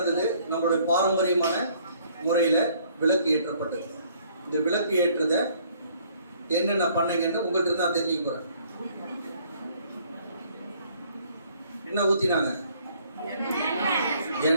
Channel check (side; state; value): both; inverted; correlation -0.61